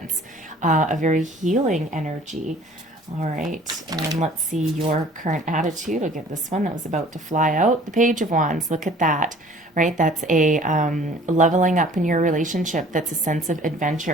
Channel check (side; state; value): both; normal; correlation 0.51